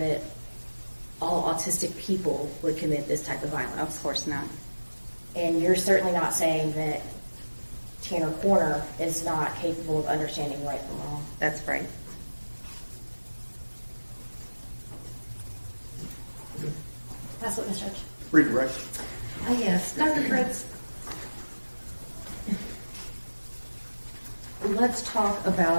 all autistic people would commit this type of violence. Of course not. And you're certainly not saying that Tanner Corner is not capable of understanding right from wrong. That's right. That's what, Ms. Judge. Redirect. Yes, Dr. Fritz. Let's talk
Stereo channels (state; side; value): inverted; both; correlation -1.00